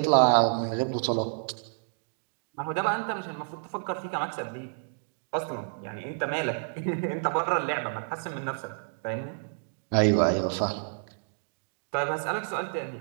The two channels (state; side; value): silent; left; digital silence